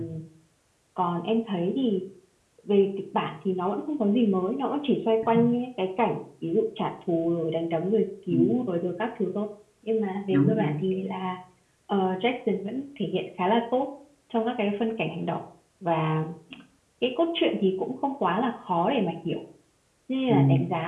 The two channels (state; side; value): identical; both; correlation 1.00